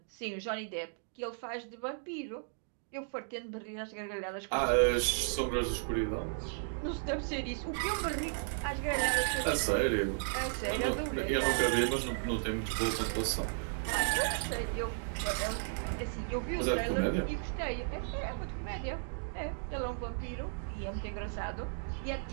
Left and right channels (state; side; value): silent; left; digital silence